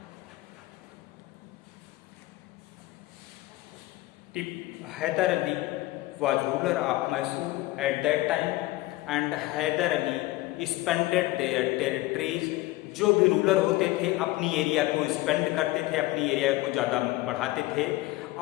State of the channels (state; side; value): quieter; right; 18.7 dB